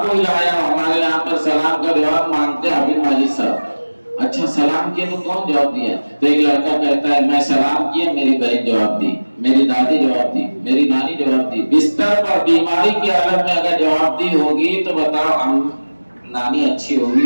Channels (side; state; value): both; inverted; correlation -1.00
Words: कोई लाया, हमारे यहाँ पर सलाम का जवाब मांगते हैं अभी माजिद साहब। अच्छा सलाम किया तो कौन जवाब दिया? तो एक लड़का कहता है मैं सलाम किया, मेरी बहन जवाब दी, मेरी दादी जवाब दी, मेरी नानी जवाब दी। बिस्तर पर बीमारी की हालत में अगर जवाब दी होगी तो बताओ नानी अच्छी होगी